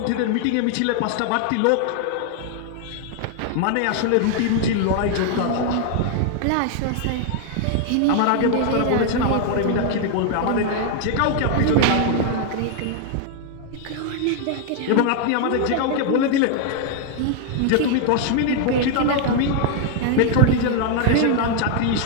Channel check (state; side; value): different; both; correlation 0.00